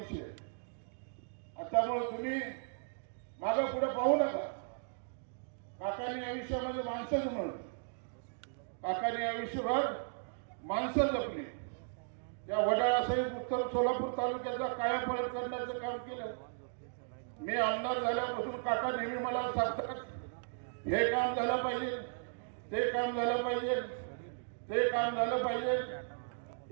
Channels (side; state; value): left; silent; digital silence